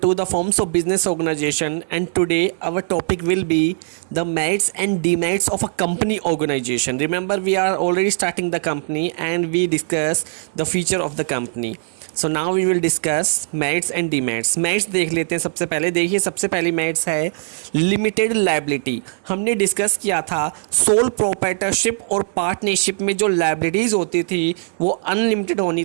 the forms of business organization, and today our topic will be the merits and demerits of a company organization. Remember, we are already starting the company and we discuss the feature of the company. So now we will discuss merits and demerits. Merits देख लेते हैं। सबसे पहले देखिए, सबसे पहली merits है limited liability. हमने डिस्कस किया था सोल प्रोप्राइटरशिप और पार्टनरशिप में जो लायबिलिटीज़ होती थी वो अनलिमिटेड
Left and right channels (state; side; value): silent; left; 57 dB below the other